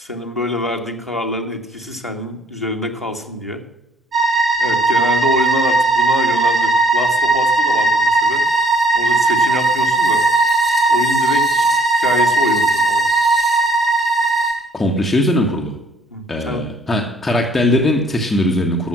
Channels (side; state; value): both; normal; correlation 0.61